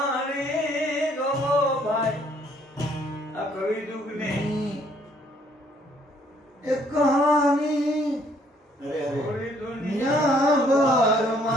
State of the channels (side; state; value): both; normal; correlation 0.64